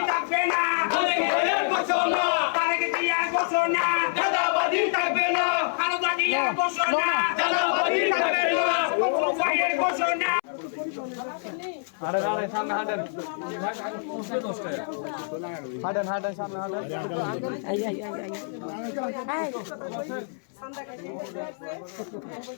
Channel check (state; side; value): silent; right; 61 dB below the other